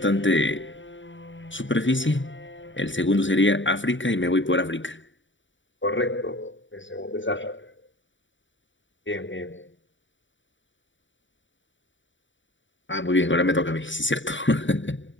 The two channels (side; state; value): right; late; 0.55 ms